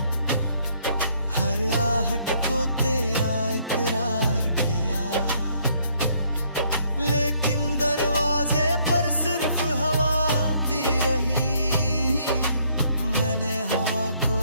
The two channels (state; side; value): inverted; both; correlation -0.67